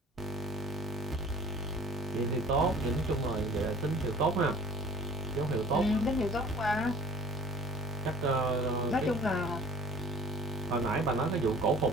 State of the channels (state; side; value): normal; both; correlation 0.47